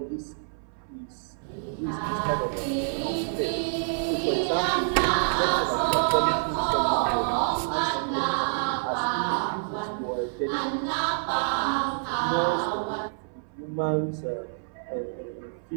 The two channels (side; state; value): left; silent; 60 dB below the other